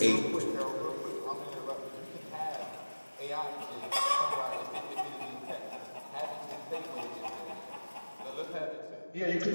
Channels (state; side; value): inverted; both; correlation -1.00